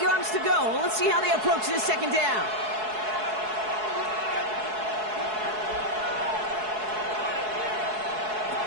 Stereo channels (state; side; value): late; left; 4.7 ms